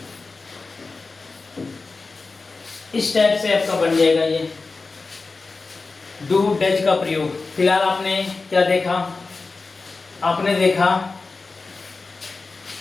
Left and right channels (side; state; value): right; quieter; 3.9 dB